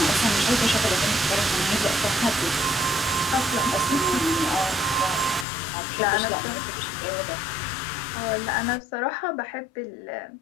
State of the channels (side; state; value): right; drops out; at 5.5 s